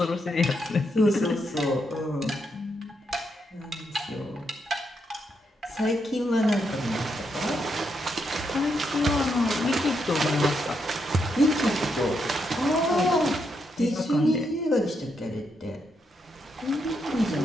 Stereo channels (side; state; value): both; normal; correlation 0.80